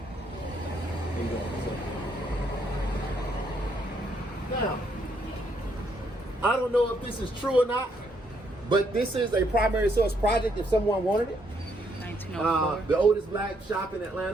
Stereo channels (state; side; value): normal; both; correlation 0.73